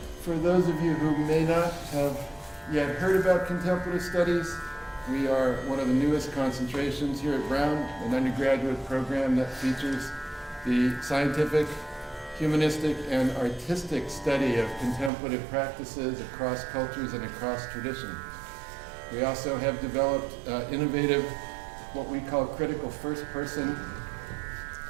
For those of you who may not have yet heard about Contemplative Studies, we are one of the newest concentrations here at Brown, an undergraduate program that features the scientific, humanistic, and artistic study of contemplative practices across cultures and across tradition. We also have developed innovative, what we call critical first-person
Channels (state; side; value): drops out; left; at 15.1 s